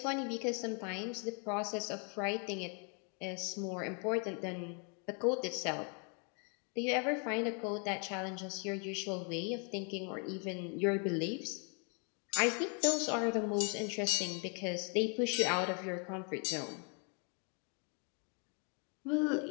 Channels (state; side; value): quieter; right; 38.1 dB